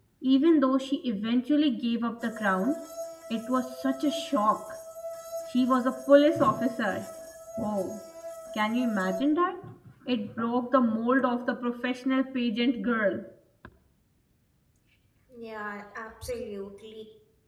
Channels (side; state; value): both; identical; correlation 1.00